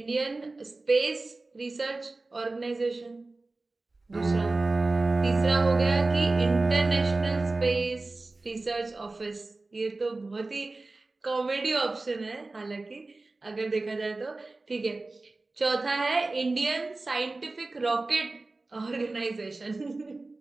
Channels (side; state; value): left; quieter; 3.3 dB